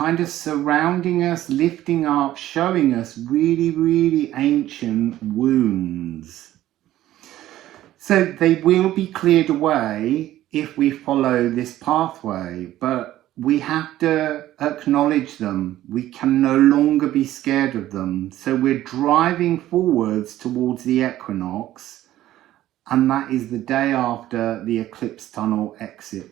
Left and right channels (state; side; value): quieter; left; 14.0 dB